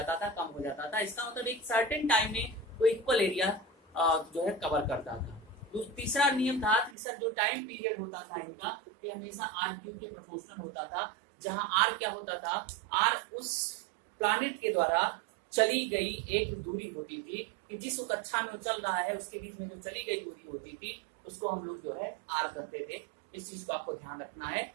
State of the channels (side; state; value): left; drops out; at 7.0 s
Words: था कम हो जाता था। इसका मतलब एक सर्टेन टाइम में वो इक्वल एरिया जो है कवर करता था। तीसरा नियम था कि सर जो टाइम पीरियड होता था इनका ये हमेशा आर क्यूब के प्रोपोर्शनल होता था, जहां आर क्या होता था, आर उस प्लैनेट के द्वारा चली गई एक दूरी होती थी कि जिस कक्षा में वो चल रहा है उसके बीच में जो चली गई दूरी होती थी उसको हम लोग जो है आर कहते थे। इस चीज को आपको ध्यान रखना है।